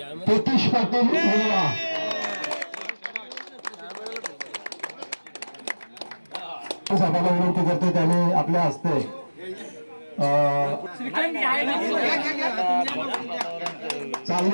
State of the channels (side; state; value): both; inverted; correlation -1.00